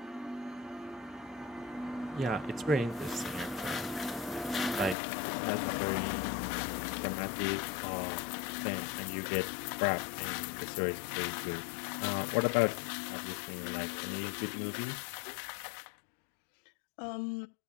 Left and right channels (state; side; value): drops out; right; at 5.0 s